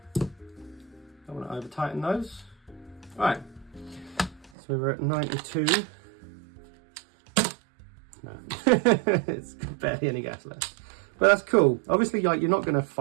Don't want to over tighten those. Right, so we're at 92. No, it's barely any gas left, but that's cool. Obviously, like, you're not going to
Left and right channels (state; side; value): drops out; left; at 4.5 s